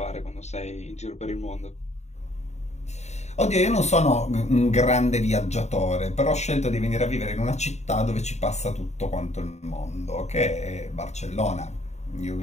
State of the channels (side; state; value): right; late; 0.32 ms